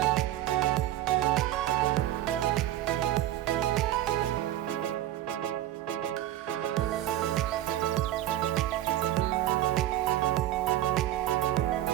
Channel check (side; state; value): left; quieter; 13.4 dB